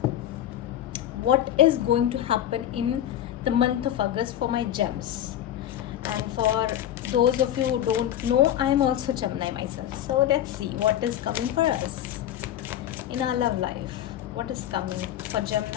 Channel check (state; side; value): quieter; right; 11.6 dB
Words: What is going to happen in the month of August for my gems? And for those of you who don't know, I am also Gemini myself. So let's see what is coming for us in our love life. What is coming for